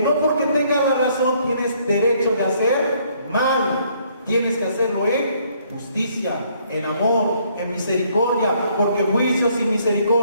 porque tengas la razón tienes derecho de hacer mal. Tienes que hacerlo en justicia, en amor, en misericordia, porque juicios y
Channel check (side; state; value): both; inverted; correlation -0.66